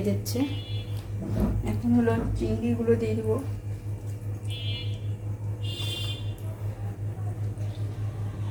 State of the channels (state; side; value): identical; both; correlation 1.00